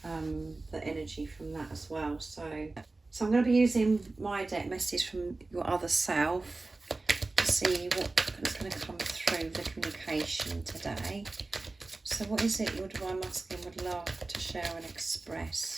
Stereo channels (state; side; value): quieter; left; 3.3 dB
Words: the energy from that as well. So I'm going to be using my deck message from your other self to see what is going to come through the communication today. So what is it your divine masculine would love to share and